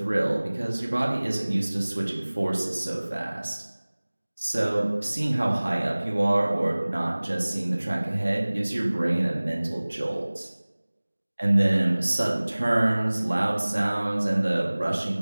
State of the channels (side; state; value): both; inverted; correlation -1.00